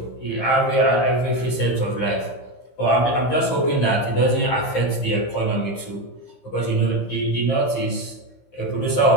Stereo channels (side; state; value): right; late; 15 ms